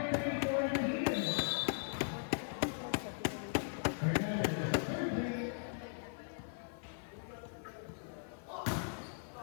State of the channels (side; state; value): right; silent; 52 dB below the other